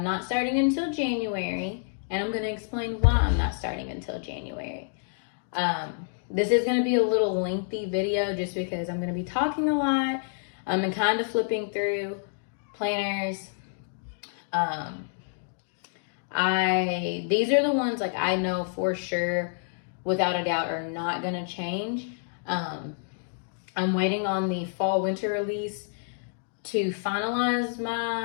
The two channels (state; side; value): silent; right; digital silence